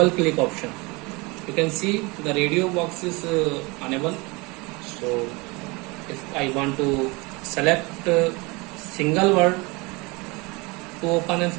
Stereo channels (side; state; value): left; quieter; 26.0 dB